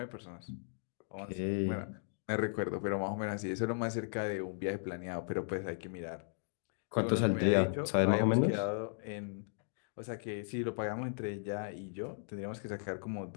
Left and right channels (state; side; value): silent; right; digital silence